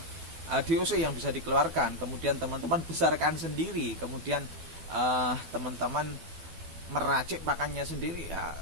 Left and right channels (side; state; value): left; late; 12 ms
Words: DOC yang bisa dikeluarkan, kemudian teman-teman besarkan sendiri, kemudian teman-teman meracik pakannya sendiri, ya